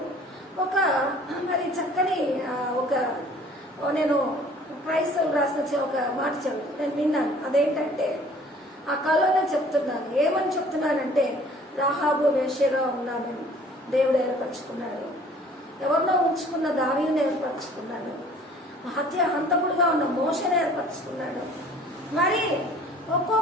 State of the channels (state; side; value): normal; both; correlation 0.52